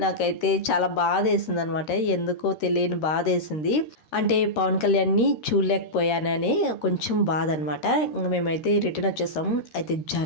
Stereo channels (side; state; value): right; late; 13 ms